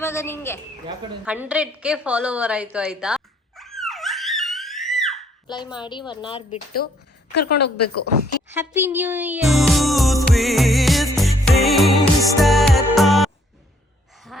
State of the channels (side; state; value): both; normal; correlation 0.66